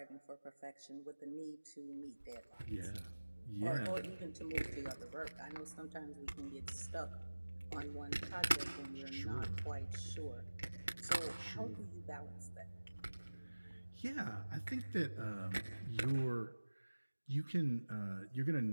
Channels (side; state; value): both; inverted; correlation -1.00